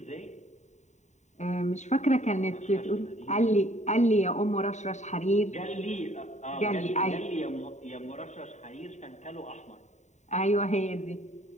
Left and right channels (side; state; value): right; late; 0.34 ms